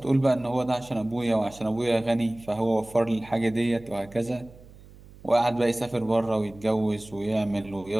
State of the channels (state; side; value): noise; right; hum, 21 dB below the sound